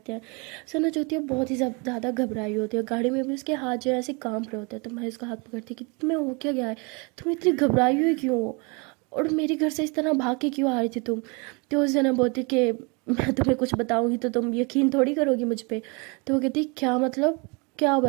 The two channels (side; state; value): left; quieter; 30.7 dB